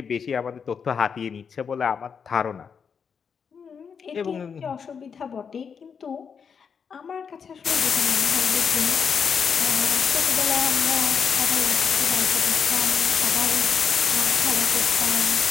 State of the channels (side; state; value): right; quieter; 6.5 dB